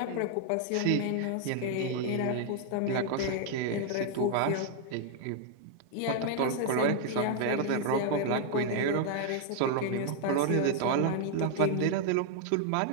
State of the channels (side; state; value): both; different; correlation 0.00